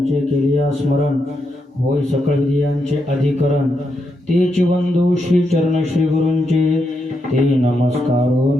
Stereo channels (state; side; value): normal; both; correlation 0.83